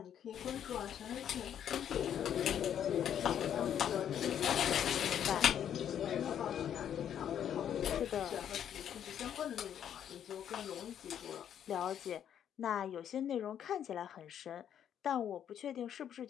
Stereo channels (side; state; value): right; quieter; 9.5 dB